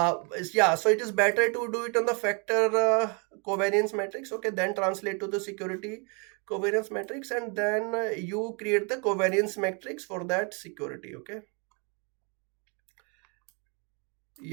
Yeah, so it is better to do it on the factor covariance matrix, okay, then translate to the security covariance matrix, and then you create the covariance matrix for that security, okay.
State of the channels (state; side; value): quieter; left; 35.0 dB